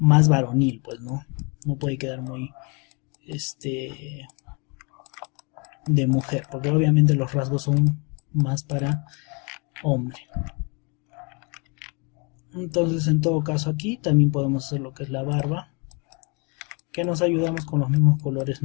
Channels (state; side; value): quieter; right; 32.3 dB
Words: varonil, pues, ¿no? No puede quedar muy de mujer, porque obviamente los rasgos son más para hombre. Entonces, en todo caso, aquí también podemos hacer lo que es la barba, que nos ayudamos con los mismos colores